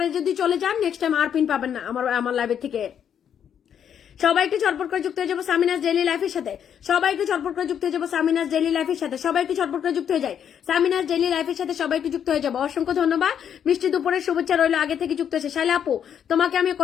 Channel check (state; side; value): quieter; right; 8.7 dB